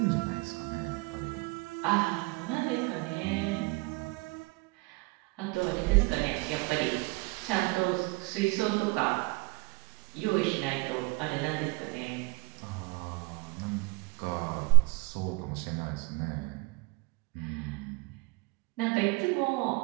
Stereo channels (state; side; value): quieter; left; 25.8 dB